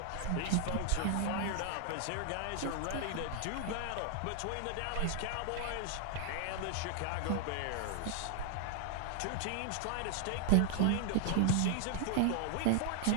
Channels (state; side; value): different; both; correlation 0.00